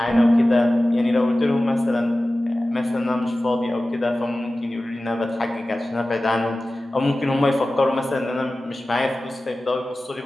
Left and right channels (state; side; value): normal; both; correlation 0.96